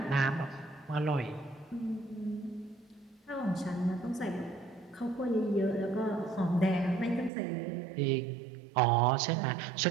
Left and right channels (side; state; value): left; drops out; at 7.3 s